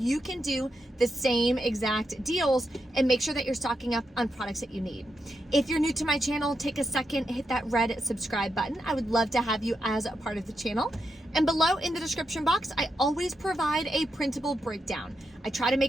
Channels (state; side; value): normal; both; correlation 0.84